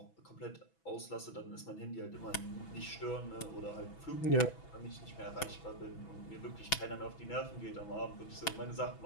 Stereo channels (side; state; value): right; late; 6.1 ms